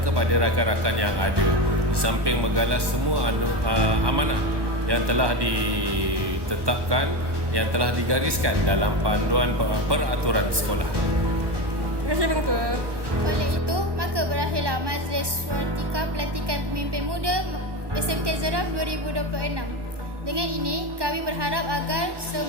kepada rakan-rakan yang ada, di samping menggalas semua amanah yang telah ditetapkan, yang telah digariskan dalam panduan peraturan sekolah. Terima kasih Pengetua. Oleh itu, maka berakhirlah majlis watika pelantikan pemimpin muda SMK Jeram 2026. Dengan ini, kami berharap agar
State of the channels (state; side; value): late; left; 1.2 ms